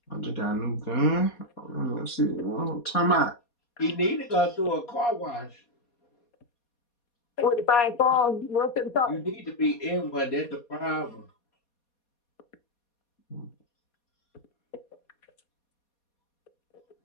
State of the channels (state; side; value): late; right; 4.2 ms